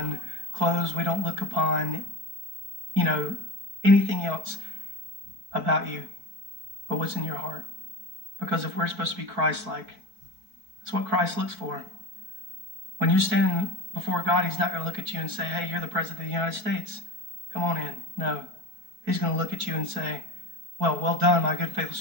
clothes. We don't look upon, anything else about you but what's in your heart. Because if we're supposed to be Christ-like, that's what Christ looks for. When you're standing before God, He's not going to look at you and say, hey, you're the President of the United States. Come on in. No. He's going to look at you and say, well done, my good, faithful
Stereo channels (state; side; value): late; left; 4.6 ms